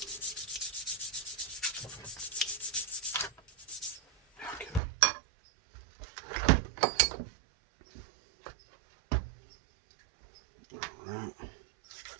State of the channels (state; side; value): drops out; left; at 4.8 s